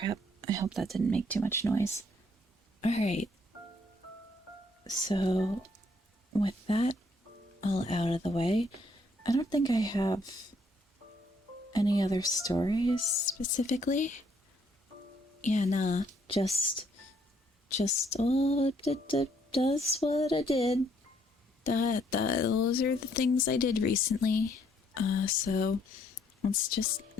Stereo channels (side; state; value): both; normal; correlation 0.68